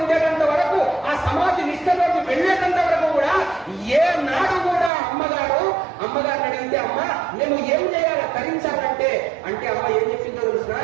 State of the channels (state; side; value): drops out; left; at 4.9 s